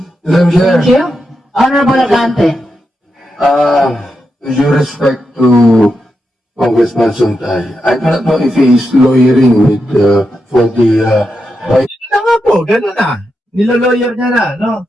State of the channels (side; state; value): both; normal; correlation 0.86